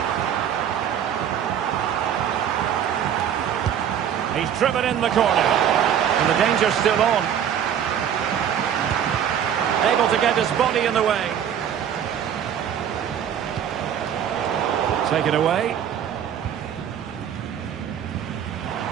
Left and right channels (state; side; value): quieter; left; 9.1 dB